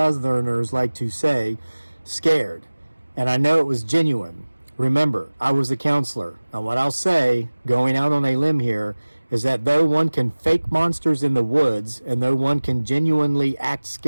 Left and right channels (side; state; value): both; inverted; correlation -1.00